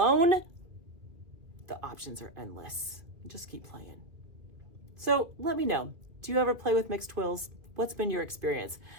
the options are endless. Just keep playing. So let me know, do you ever play with mixed twills? What's been your experience?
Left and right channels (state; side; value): late; left; 2.3 ms